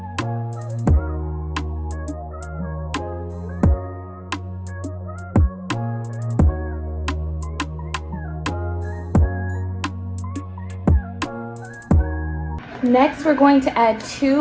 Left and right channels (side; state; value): both; identical; correlation 1.00